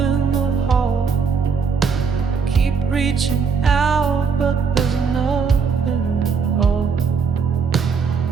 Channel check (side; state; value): left; quieter; 5.7 dB